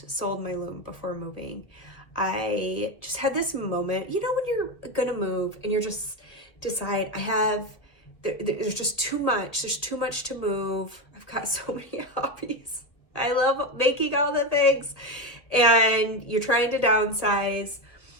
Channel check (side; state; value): right; late; 1.9 ms